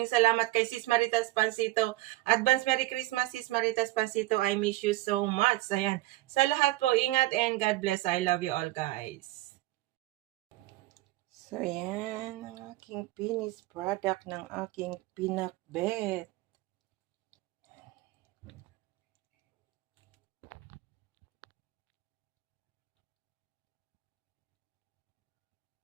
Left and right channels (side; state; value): left; quieter; 18.3 dB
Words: salamat. Kay Sis Maritas Pansito, advance Merry Christmas, Sis Maritas Pansito. I miss you so much. Ayan, sa lahat po, ingat and God bless. I love you all, guys. So, yan ang aking finished product ng aking pinakbet.